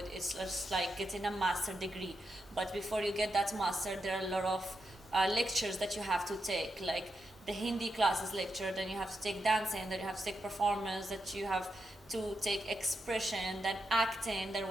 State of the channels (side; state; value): both; normal; correlation 0.85